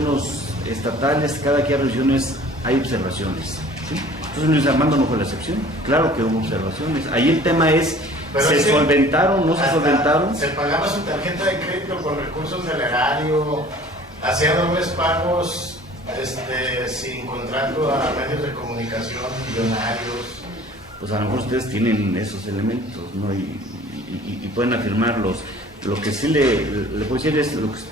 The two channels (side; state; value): both; normal; correlation 0.49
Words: estatales, cada que hay revisiones hay observaciones, ¿sí? Entonces Luis Armando no fue la excepción, claro que hubo observaciones. Ahí el tema es, pero ¿se solventaron, no se solventaron? Se pagaba su tarjeta de crédito con recursos del erario, hacía dobles pagos sin contrato a medios de comunicación millonarios. Pues a lo mejor ustedes tienen esos elementos, ¿no? Y pueden afirmarlos. Lo que sí le puedo decir es lo que